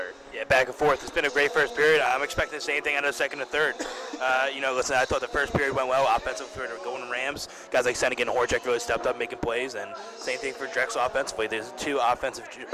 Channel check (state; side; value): identical; both; correlation 1.00